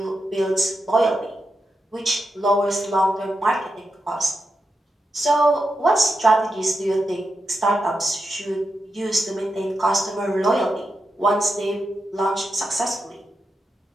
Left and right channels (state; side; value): normal; both; correlation 0.87